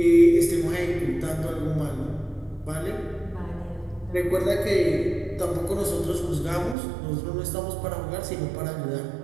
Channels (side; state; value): left; drops out; at 6.8 s